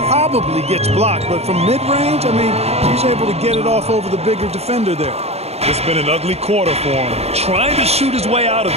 gets blocked. But from mid-range, I mean, he's able to get it off over the bigger defender there. It's been an ugly quarter for him. Trying to shoot his way out of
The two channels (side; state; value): left; late; 0.30 ms